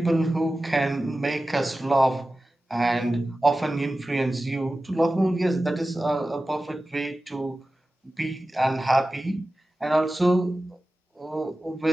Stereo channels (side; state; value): both; normal; correlation 0.95